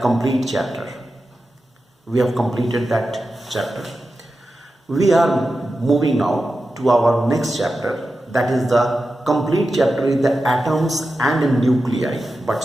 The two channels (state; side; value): normal; both; correlation 0.92